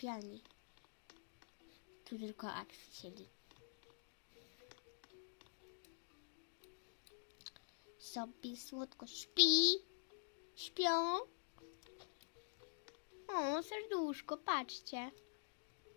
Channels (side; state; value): right; silent; digital silence